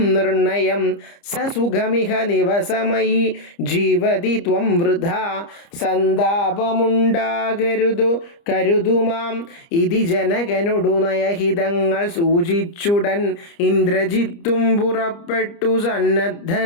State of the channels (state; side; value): late; right; 30 ms